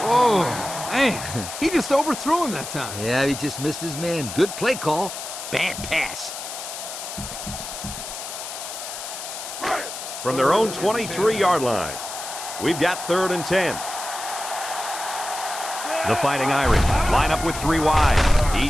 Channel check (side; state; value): left; noise; hiss, 8 dB below the sound